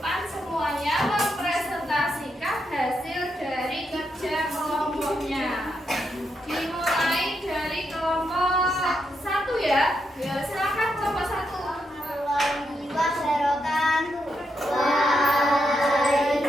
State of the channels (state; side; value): normal; both; correlation 0.82